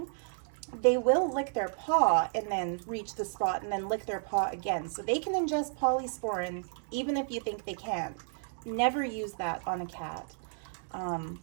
they will lick their paw and then reach the spot and then lick their paw again. So they can ingest polysporin even if you think they can't. Never use that on a cat.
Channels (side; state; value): left; silent; digital silence